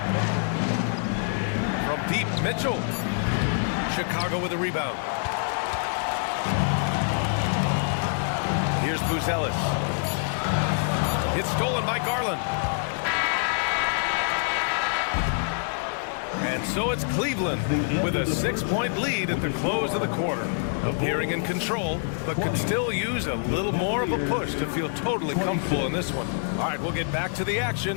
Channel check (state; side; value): silent; right; digital silence